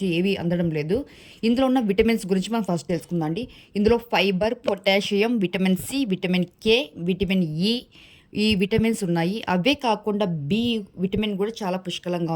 ఏవి అందడం లేదు. ఇందులో ఉన్న విటమిన్స్ గురించి మనం ఫస్ట్ తెలుసుకుందాం అండి. ఇందులో fibre, potassium, vitamin C, vitamin K, vitamin E, ఈ విటమిన్స్ ఉన్నాయి. అవే కాకుండా బి విటమిన్ కూడా చాలా పుష్కలంగా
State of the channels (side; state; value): both; identical; correlation 1.00